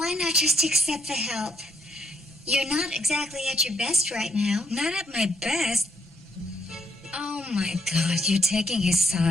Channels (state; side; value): normal; both; correlation 0.73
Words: not just accept the help? You're not exactly at your best right now. Not at my best. Oh my God, you're taking his